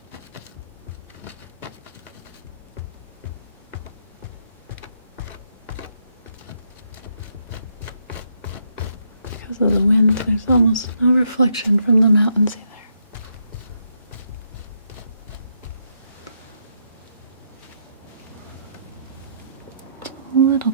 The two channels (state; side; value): inverted; both; correlation -0.75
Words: Because of the wind, there's almost no reflection from the mountains either. A little